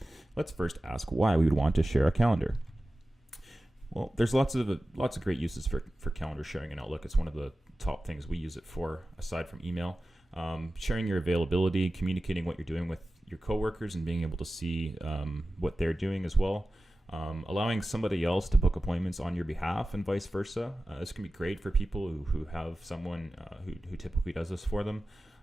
Let's first ask why we would want to share a calendar. Well, there's lots of great uses for calendar sharing in Outlook. It's one of the top things we use it for, aside from email. Sharing your availability, communicating what you're doing with your coworkers, and being able to see what they're doing as well. Allowing somebody else to book appointments on your behalf and vice versa. This can be great for people who have someone who typically does this for them.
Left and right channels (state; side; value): normal; both; correlation 0.95